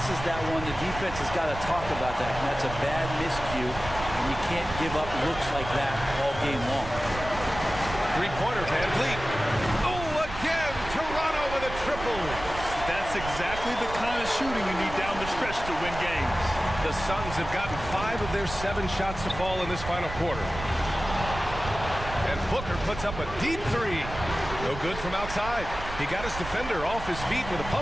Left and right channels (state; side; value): noise; right; rumble, 10 dB below the sound